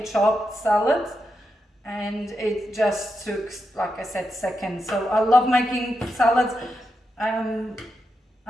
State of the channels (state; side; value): normal; both; correlation 0.86